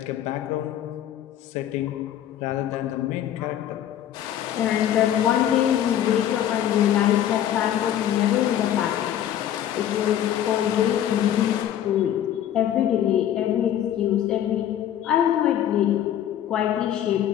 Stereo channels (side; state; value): right; quieter; 10.9 dB